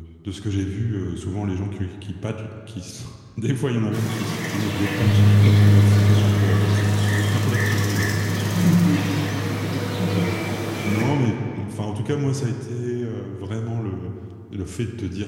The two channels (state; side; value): identical; both; correlation 1.00